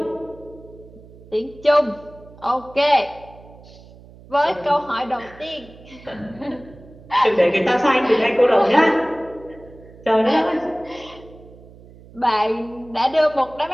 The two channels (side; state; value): right; noise; hum, 21 dB below the sound